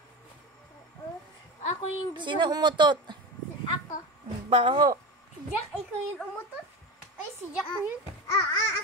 Ako yung gusto. Sino umutot? Ako. Baho. Si Jack, ikaw yung umutot? Ay, si Jack yun.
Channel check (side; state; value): both; normal; correlation 0.24